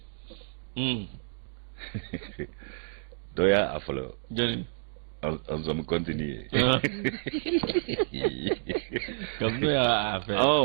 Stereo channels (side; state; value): left; silent; digital silence